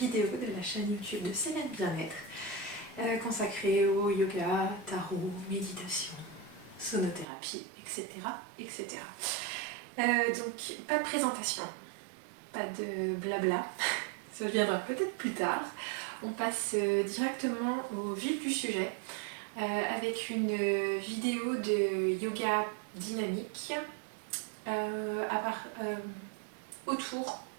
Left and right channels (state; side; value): drops out; left; at 7.2 s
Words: de la chaîne YouTube de Célène Bien-être consacrée au yoga, tarot, méditation, sonothérapie, etc. etc. Donc pas de présentation, pas de blabla, ça viendra peut-être plus tard. On passe directement au vif du sujet avec une vidéo de yoga dynamique autour